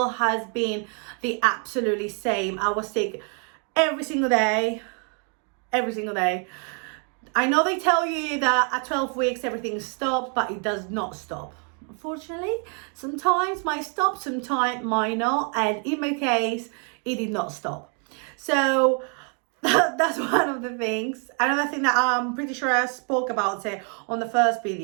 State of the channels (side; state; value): left; quieter; 39.9 dB